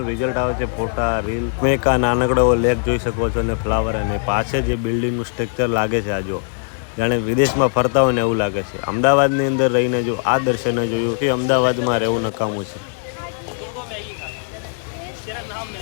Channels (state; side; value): silent; right; digital silence